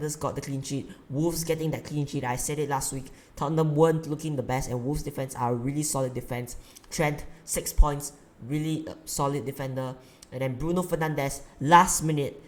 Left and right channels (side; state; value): both; identical; correlation 1.00